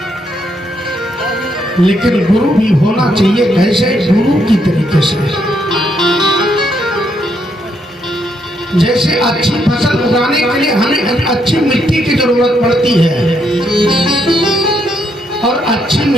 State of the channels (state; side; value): normal; both; correlation 0.76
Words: लेकिन गुरु भी होना चाहिए कैसे? गुरु की तरीके से। जैसे अच्छी फसल उगाने के लिए हमें अच्छी मिट्टी की जरूरत पड़ती है और अच्छी